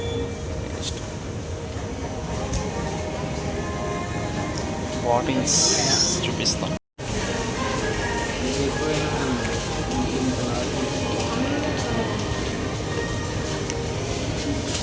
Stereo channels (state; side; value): identical; both; correlation 1.00